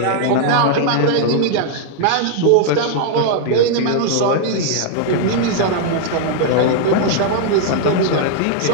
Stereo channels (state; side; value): different; both; correlation 0.00